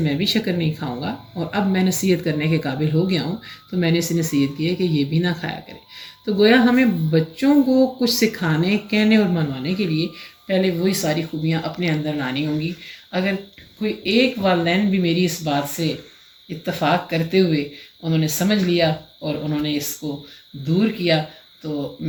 بھی شکر نہیں کھاؤں گا، اور اب میں نصیحت کرنے کے قابل ہو گیا ہوں، تو میں نے اسے نصیحت کی ہے کہ یہ بھی نہ کھایا کرے۔ تو گویا ہمیں بچوں کو کچھ سکھانے، کہنے اور منوانے کے لیے پہلے وہی ساری خوبیاں اپنے اندر لانی ہوں گی۔ اگر کوئی ایک والدین بھی میری اس بات سے اتفاق کرتے ہوئے انہوں نے سمجھ لیا اور انہوں نے اس کو دور کیا، تو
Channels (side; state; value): both; identical; correlation 1.00